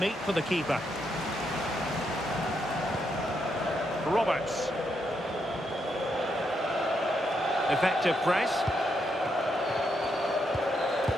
for the keeper. Roberts. Effective press.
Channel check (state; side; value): normal; both; correlation 0.79